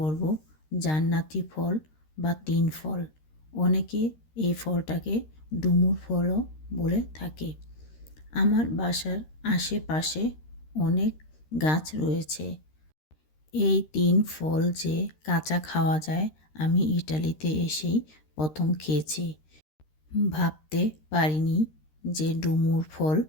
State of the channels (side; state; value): right; late; 13 ms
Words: জান্নাতি ফল বা তিন ফল। অনেকে এই ফলটাকে ডুমুর ফলও বলে থাকে। আমার বাসার আশেপাশে অনেক গাছ রয়েছে। এই তিন ফল যে কাঁচা খাওয়া যায় আমি ইটালিতে এসেই প্রথম খেয়েছি। ভাবতে পারিনি যে ডুমুর ফল